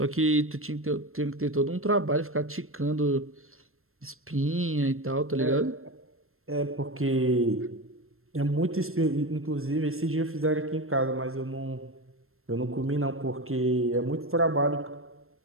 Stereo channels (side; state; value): left; late; 0.62 ms